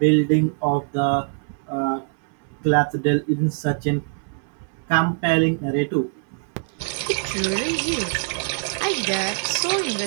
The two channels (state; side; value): silent; left; 63 dB below the other